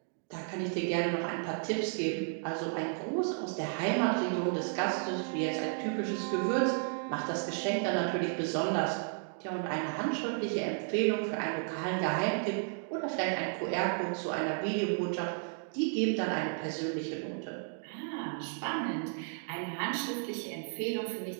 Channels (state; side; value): silent; left; 56 dB below the other